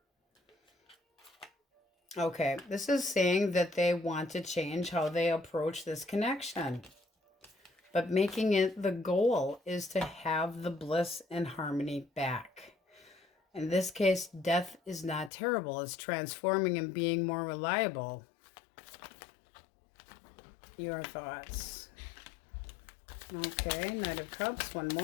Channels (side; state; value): right; drops out; at 15.3 s